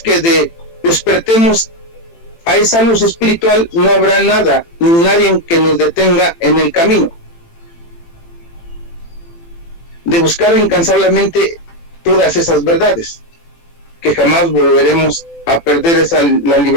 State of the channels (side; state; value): right; late; 18 ms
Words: despertemos a esa luz espiritual, no habrá nada ni nadie que nos detenga en el camino de buscar incansablemente todas esas verdades, que jamás volveremos a perder la